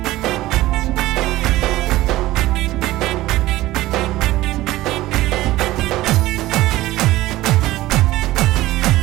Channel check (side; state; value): left; quieter; 17.0 dB